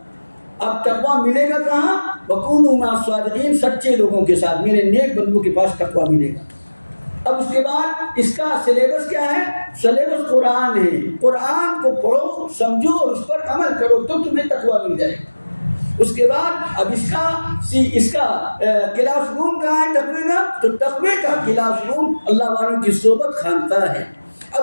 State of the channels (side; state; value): both; inverted; correlation -1.00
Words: اب تقویٰ ملے گا کہاں؟ وکونوا مع الصادقین، سچے لوگوں کے ساتھ، میرے نیک بندوں کے پاس تقویٰ ملے گا. اب اس کے بعد اس کا سلیبس کیا ہے؟ سلیبس قرآن ہے. قرآن کو پڑھو، سمجھو اور اس پر عمل کرو تو تمہیں تقویٰ مل جائے گا. اس کے بعد اب اس کا کلاس روم کہاں ہے تقوی کا؟ تو تقوی کا کلاس روم اللہ والوں کی صحبت خانقاہ ہے.